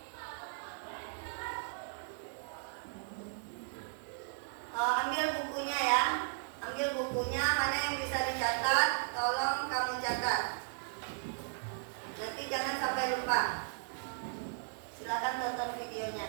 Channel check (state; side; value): silent; left; digital silence